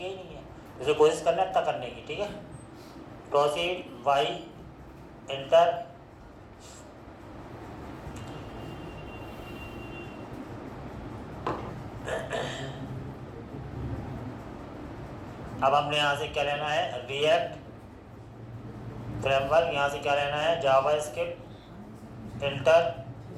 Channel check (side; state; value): both; identical; correlation 1.00